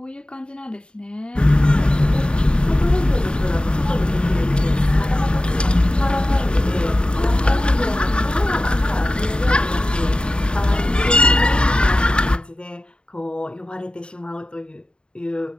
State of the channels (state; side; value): late; right; 0.052 ms